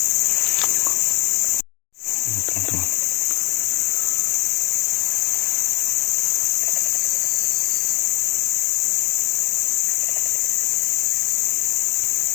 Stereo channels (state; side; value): quieter; right; 25.1 dB